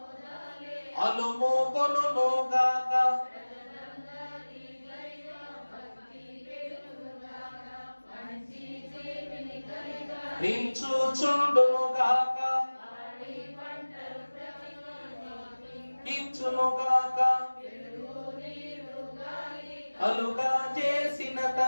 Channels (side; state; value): both; inverted; correlation -1.00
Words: అలుమోకొనుగాక, రించుచుండునుగాక, ఇచ్చునుగాక, అలుగా చేసిన